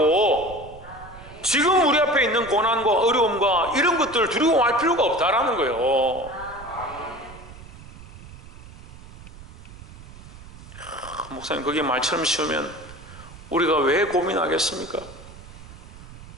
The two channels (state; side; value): noise; right; rumble, 17 dB below the sound